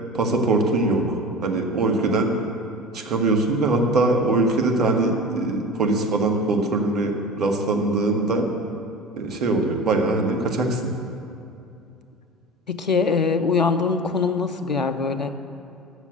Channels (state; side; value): normal; both; correlation 0.33